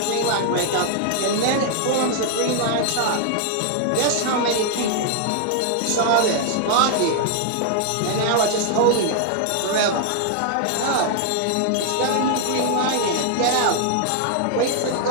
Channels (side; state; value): both; different; correlation 0.00